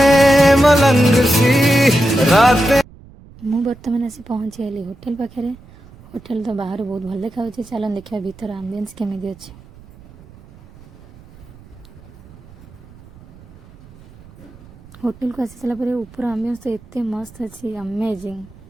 मु बर्तमान आसी पहुँची गली होटेल पाखे होटेल तो बाहर बहुत भल देखा चलन देखा भीतर आम्बियंस केमी अच्छे होटेल को आसी सारापर ऊपर आम्बियंस तो एते मस्त अच्छी अमेजिंग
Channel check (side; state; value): right; noise; rumble, 22 dB below the sound